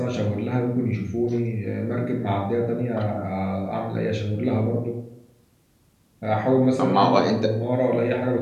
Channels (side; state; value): both; identical; correlation 1.00